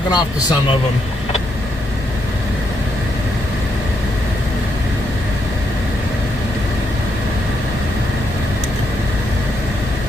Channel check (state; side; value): normal; both; correlation 0.78